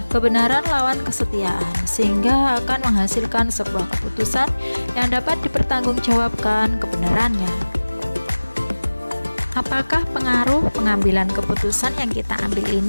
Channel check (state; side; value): inverted; both; correlation -1.00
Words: kebenaran lawan kesetiaan, sehingga akan menghasilkan sebuah keputusan yang dapat dipertanggungjawabkan kebenarannya. Apakah pengaruh pengambilan keputusan yang kita ambil